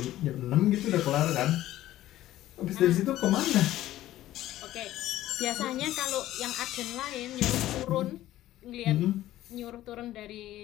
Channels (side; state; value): right; quieter; 14.4 dB